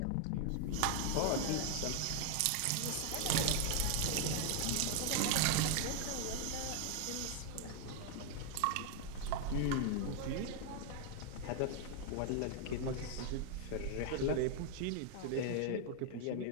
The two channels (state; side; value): different; both; correlation 0.00